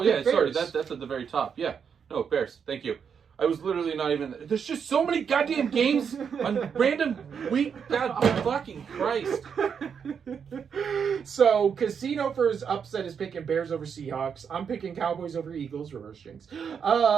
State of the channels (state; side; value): quieter; left; 6.9 dB